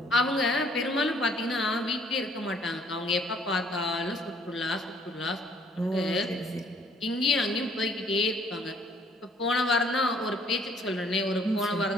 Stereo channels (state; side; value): normal; both; correlation 0.61